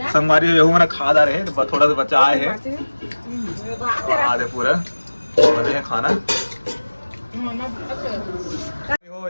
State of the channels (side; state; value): both; inverted; correlation -1.00